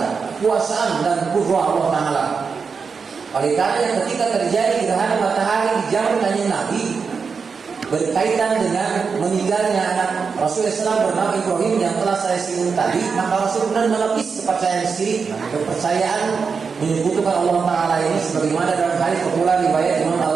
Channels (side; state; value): left; quieter; 5.4 dB